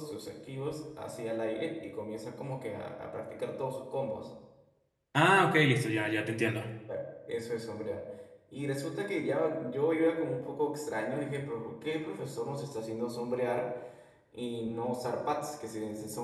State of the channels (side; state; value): both; identical; correlation 1.00